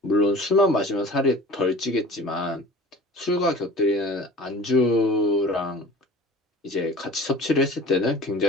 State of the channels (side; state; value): both; normal; correlation 0.42